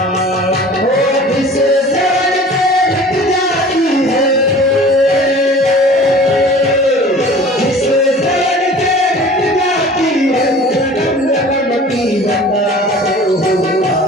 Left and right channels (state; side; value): normal; both; correlation 0.44